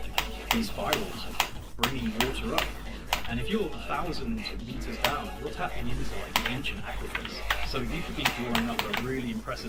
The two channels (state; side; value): identical; both; correlation 1.00